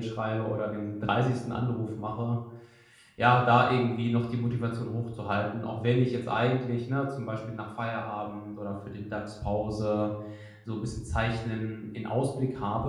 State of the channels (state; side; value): identical; both; correlation 1.00